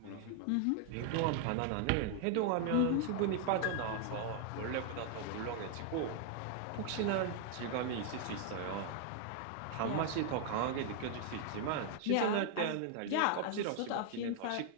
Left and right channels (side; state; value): both; different; correlation 0.00